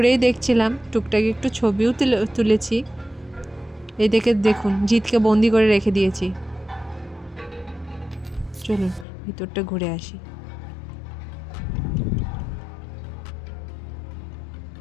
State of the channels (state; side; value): drops out; right; at 9.1 s